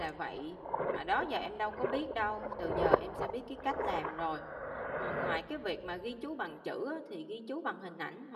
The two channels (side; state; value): both; identical; correlation 1.00